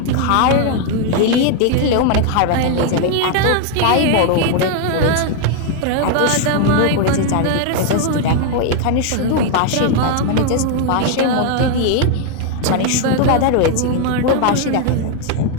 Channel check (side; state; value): both; different; correlation 0.00